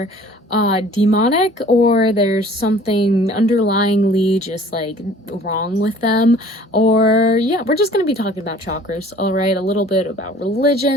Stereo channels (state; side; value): normal; both; correlation 0.50